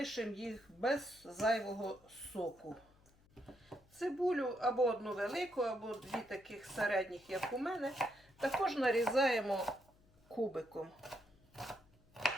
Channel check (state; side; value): noise; left; hum, 29 dB below the sound